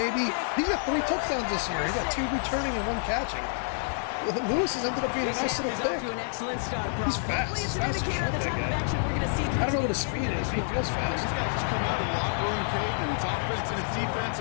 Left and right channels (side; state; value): right; silent; digital silence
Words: He got 3 touchdowns this year. He got 2 returning and 1 catching. Lewis has ended up being a nice little pick. He's fast. He's fast as shit, that guy. I don't know what his speed is. He feels fast. These guys just come out of the locker room, Kate, and it's offense and it's